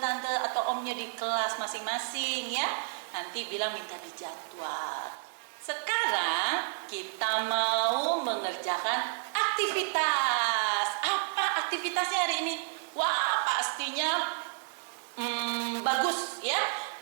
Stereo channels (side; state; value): left; silent; digital silence